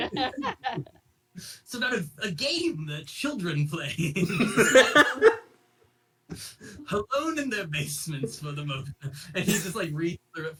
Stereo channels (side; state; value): both; identical; correlation 1.00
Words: a game that children play alone in their basements for the moment. And he just like reads through it